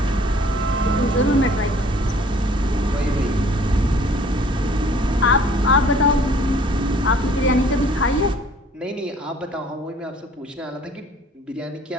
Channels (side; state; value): both; normal; correlation 0.54